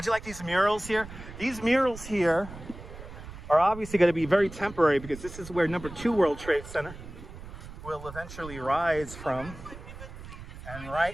you like these murals here? These murals here are obviously going to be very temporary because this is where number 2 World Trade Center will eventually rise from. And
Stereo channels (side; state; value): right; noise; rumble, 13 dB below the sound